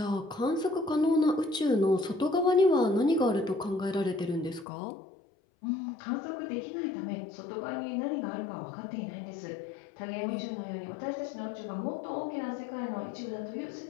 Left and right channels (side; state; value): right; drops out; at 4.7 s